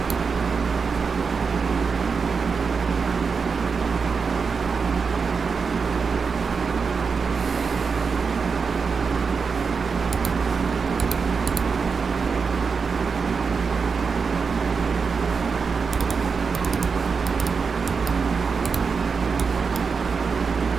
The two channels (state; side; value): quieter; left; 5.3 dB